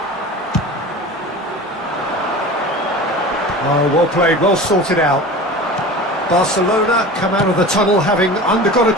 Oh, well played, well sorted out. Barcelona come out of the tunnel having undergone a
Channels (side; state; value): both; normal; correlation 0.35